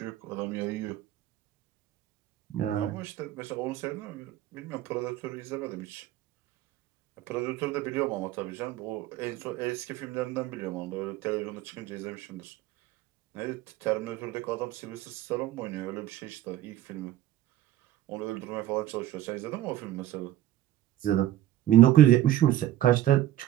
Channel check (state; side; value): quieter; left; 13.4 dB